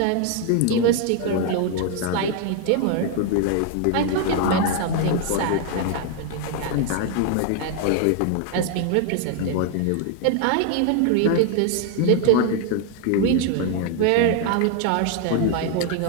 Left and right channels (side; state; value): both; different; correlation 0.01